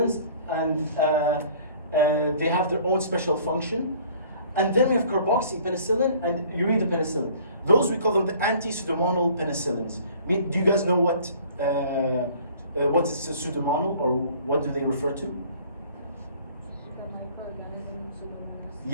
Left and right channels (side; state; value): both; inverted; correlation -0.53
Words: and they have their own special function. And then we have carboxypenicillin and uridopenicillin. Those we call them the anti-pseudomonal penicillins. Do you guys know what is a pseudomonal, or what do they refer to? The microorganism Pseudomonas.